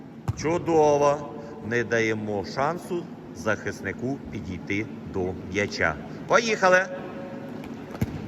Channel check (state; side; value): identical; both; correlation 1.00